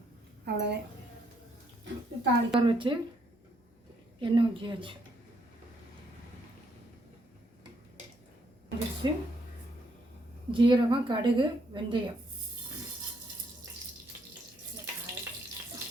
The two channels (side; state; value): both; normal; correlation 0.72